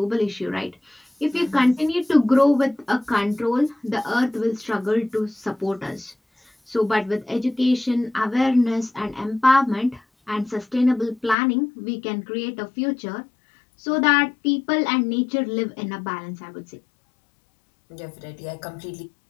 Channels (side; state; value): right; drops out; at 11.4 s